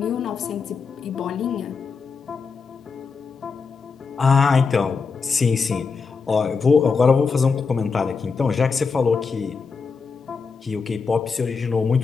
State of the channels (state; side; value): quieter; right; 5.1 dB